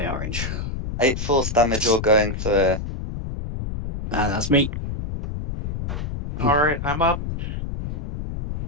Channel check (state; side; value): noise; left; rumble, 4 dB below the sound